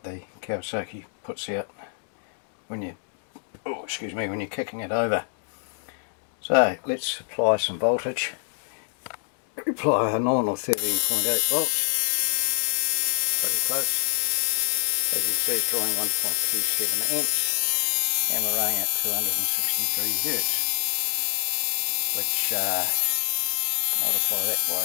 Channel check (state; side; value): silent; right; digital silence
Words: the Kawasaki puts out when you, when you're kicking it over. So let's apply some voltage. Apply a nominal 13.8 volts, pretty close. As you can see, it's drawing 1.27 amps, and we're running at 263 hertz, which multiply that